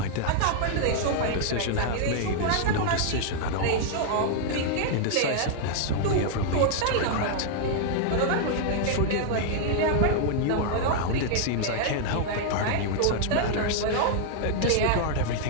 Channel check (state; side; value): different; both; correlation -0.01